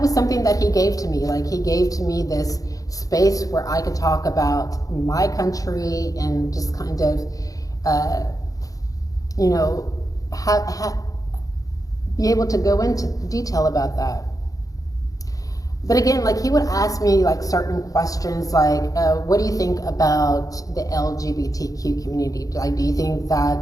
was something that he gave to me. Like, he gave to me this space where I could talk about my country and just kind of, you know, be able to go into detail about that. But again, like, he would ask me like certain questions like, what do you think about the LGBTQ community? Like, do you think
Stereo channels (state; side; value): late; right; 0.17 ms